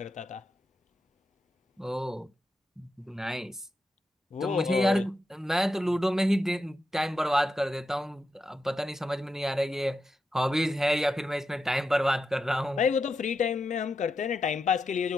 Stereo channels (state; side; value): normal; both; correlation 0.86